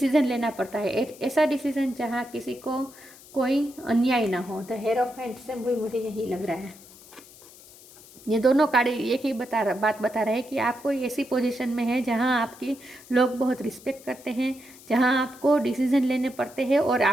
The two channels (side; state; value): left; noise; hiss, 21 dB below the sound